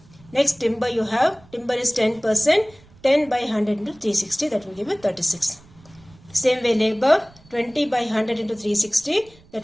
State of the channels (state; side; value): noise; right; rumble, 26 dB below the sound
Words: Next timber you have. Timber is 10%. 10 by 100 into 360. That will give you 36. Same way labor. 20 by 100 into 360. That